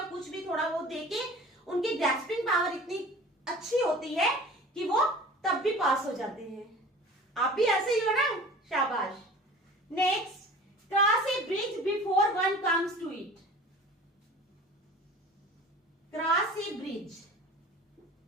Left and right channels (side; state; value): both; normal; correlation 0.42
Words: कुछ भी थोड़ा बहुत देके, उनकी ग्रैस्पिंग पावर इतनी अच्छी होती है कि वो तब भी पास हो जाते हैं। आप भी ऐसे ही हो ना, शाबाश। Next, cross a bridge before one comes to it, cross a bridge,